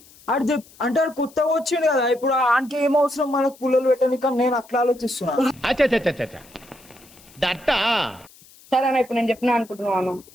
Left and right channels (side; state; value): left; noise; hiss, 25 dB below the sound